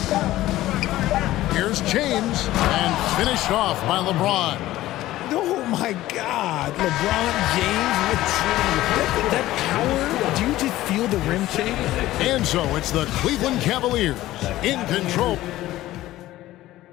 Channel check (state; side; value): quieter; right; 15.6 dB